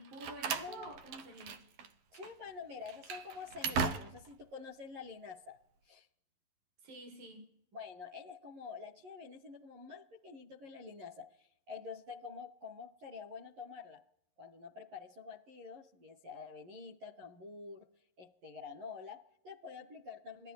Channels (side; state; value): left; late; 11 ms